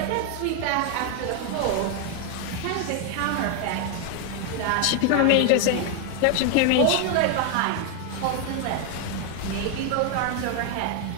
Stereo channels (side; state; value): both; different; correlation 0.01